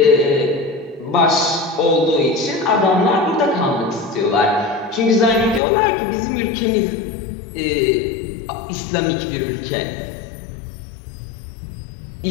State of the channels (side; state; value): right; drops out; at 5.6 s